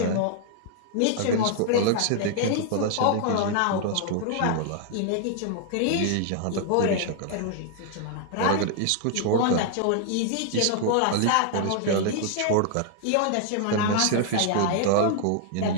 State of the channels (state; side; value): different; both; correlation 0.00